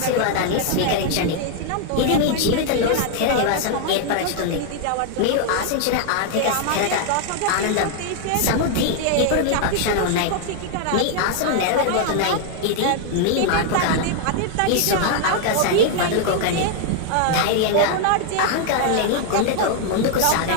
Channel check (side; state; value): both; different; correlation 0.00